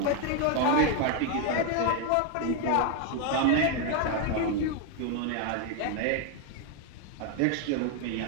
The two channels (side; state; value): both; different; correlation 0.01